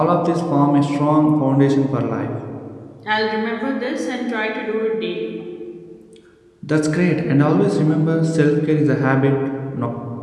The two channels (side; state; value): both; identical; correlation 1.00